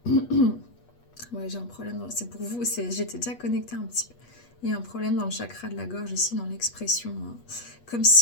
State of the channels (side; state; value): right; late; 8.3 ms